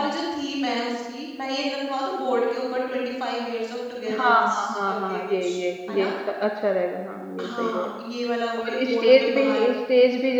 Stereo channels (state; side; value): identical; both; correlation 1.00